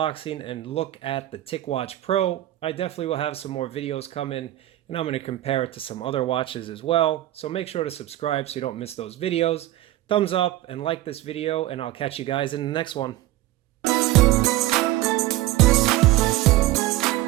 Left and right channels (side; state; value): left; quieter; 15.5 dB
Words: and look at the TicWatch Pro. I definitely will have some more videos coming, and I'm going to compare it to some other watches as well. So make sure to subscribe so you don't miss those videos. Thumbs up and like this video, and I'll catch you guys in the next one.